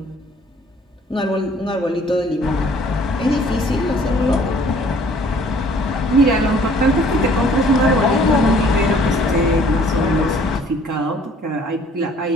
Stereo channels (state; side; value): normal; both; correlation 0.56